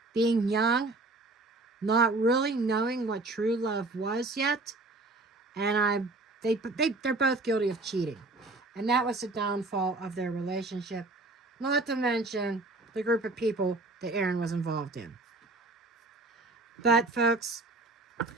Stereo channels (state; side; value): quieter; left; 3.1 dB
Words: being young, not really knowing what true love was yet. And they're both guilty of cheating. And that was the downfall of their relationship. Not to mention the group of people that Aaron was involved in. But, folks,